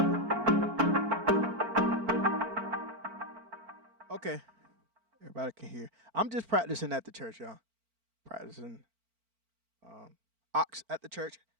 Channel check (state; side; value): late; left; 4.4 ms